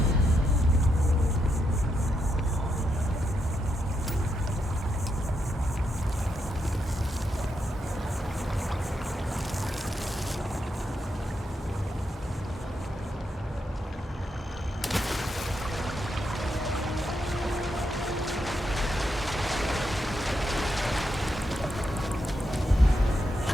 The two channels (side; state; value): both; normal; correlation 0.82